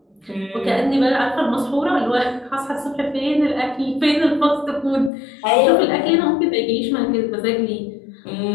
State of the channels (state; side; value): drops out; right; at 5.1 s